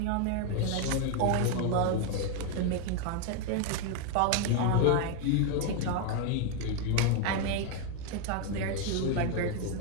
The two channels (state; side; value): different; both; correlation 0.01